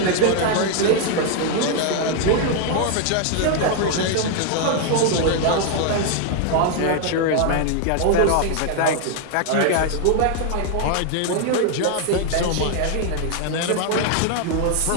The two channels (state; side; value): different; both; correlation 0.00